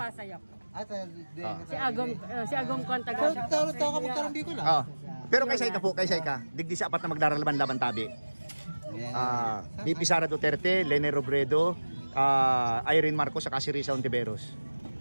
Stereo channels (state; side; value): inverted; both; correlation -1.00